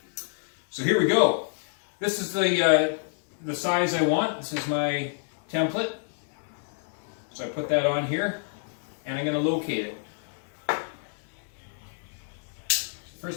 So here we go. This is the size I want. This is my template. So I put that on here, and I'm going to locate it.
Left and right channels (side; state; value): right; silent; digital silence